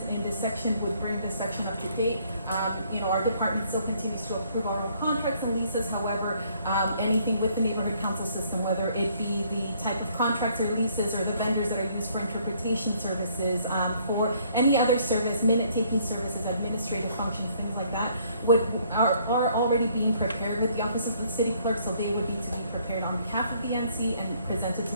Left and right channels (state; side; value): inverted; both; correlation -0.64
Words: in this section would bring this section up to date. Our department still continues to approve our own contracts and leases. However, anything with the neighborhood council system, whether it be the type of contracts or leases or the vendors that are used for interpretation services, for any other service, minute-taking services, administrative functions, things like that, are already being prepared with the office of the city clerk, so they would need to be prepared on behalf of the NC and presented to